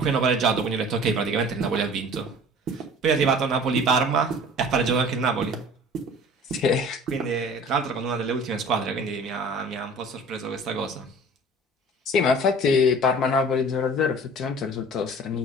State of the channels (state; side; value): normal; both; correlation 0.45